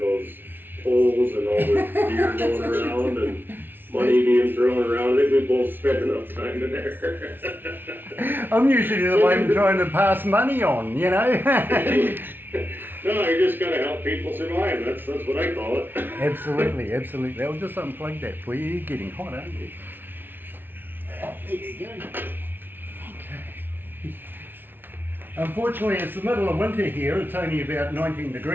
those poles and all the beer going around and money being thrown around. I think we both spent enough time in there. I'm usually the one trying to pass money on, you know. No, you just gotta help people survive. That's what I call it. Absolutely. I'll just unplug that for you. You're getting hot, aren't you? There you go. Okay. Unfortunately, it's the middle of winter here. It's only about 19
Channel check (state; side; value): late; left; 0.098 ms